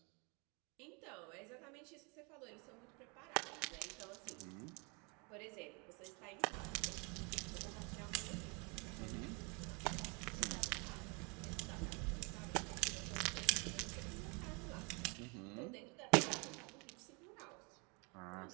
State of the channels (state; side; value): quieter; left; 32.3 dB